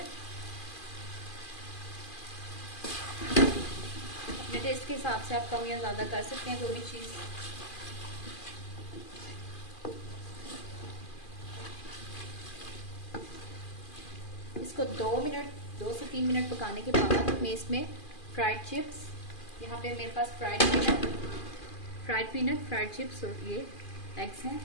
अपने टेस्ट के हिसाब से आप कम या ज़्यादा कर सकते हैं कोई भी चीज़। इसको 2 से 3 मिनट पकाने के बाद मैं इसमें फ्राइड चिप्स, यहाँ पे मेरे पास फ्राइड पीनट, फ्राइड चिप्स और ये एग्स हैं,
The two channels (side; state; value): right; late; 2.4 ms